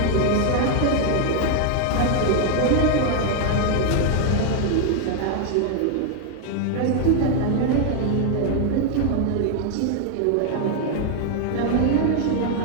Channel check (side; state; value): both; different; correlation 0.00